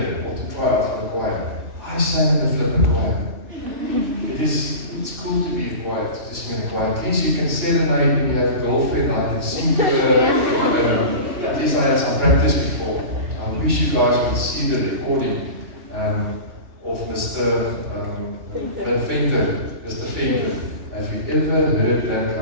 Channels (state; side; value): late; left; 3.0 ms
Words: or to try out for the choir. I sang in the flippant choir. It's cool to be quiet, to sing in the choir. At least you can serenade when you have a girlfriend. I can sing to her. At least I had some practice before. I wish you guys would see the recording of Mr. Fender. Have you ever heard that